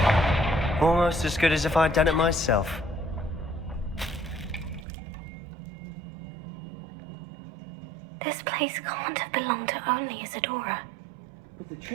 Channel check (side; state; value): left; drops out; at 4.9 s